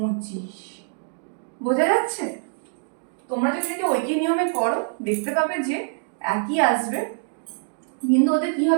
বোঝা যাচ্ছে? তোমরা যদি এটা ঐকিক নিয়মে করো দেখতে পাবে যে একই আসবে, কিন্তু ওদের কি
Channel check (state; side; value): silent; left; digital silence